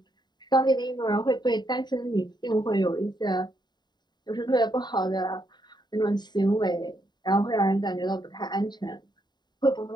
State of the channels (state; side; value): late; right; 0.21 ms